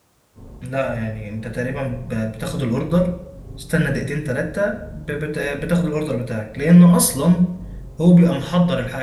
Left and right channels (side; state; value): both; identical; correlation 1.00